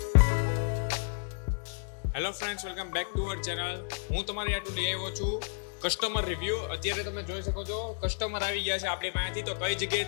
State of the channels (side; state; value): right; silent; 57 dB below the other